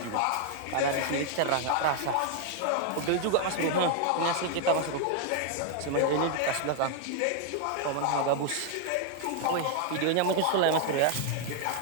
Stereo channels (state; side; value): different; both; correlation 0.00